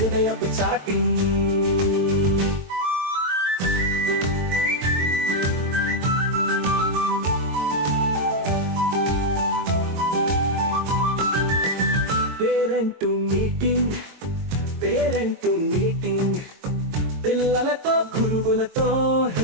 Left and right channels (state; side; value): late; left; 22 ms